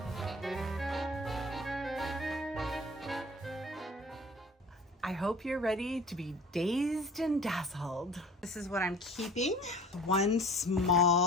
I hope you're ready to be dazed and dazzled. This is what I'm keeping. One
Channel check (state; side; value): normal; both; correlation 0.44